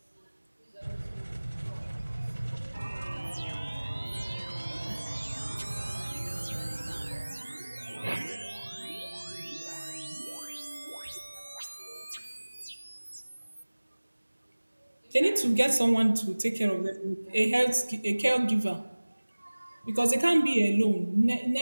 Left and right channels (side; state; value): both; inverted; correlation -1.00